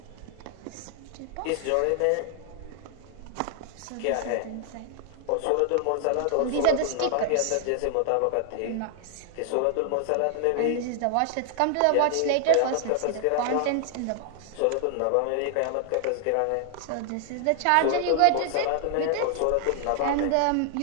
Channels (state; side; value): different; both; correlation 0.00